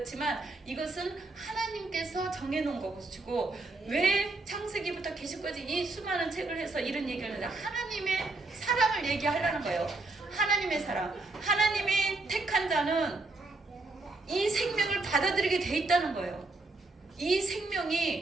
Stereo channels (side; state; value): left; quieter; 3.3 dB